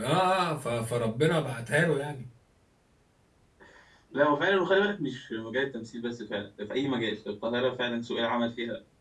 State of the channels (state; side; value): identical; both; correlation 1.00